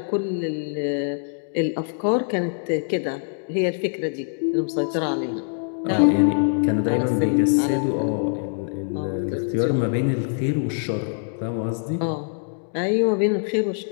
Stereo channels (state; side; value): silent; right; digital silence